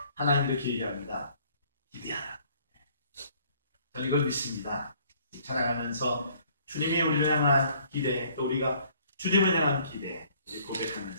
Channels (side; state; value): both; inverted; correlation -0.60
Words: 하나님 이렇게 얘기합니다. 기대하라. 저는 이걸 믿습니다. 찬양하면서 주님이 우리를 향한 기대, 또 우리가 주님을 향한 기대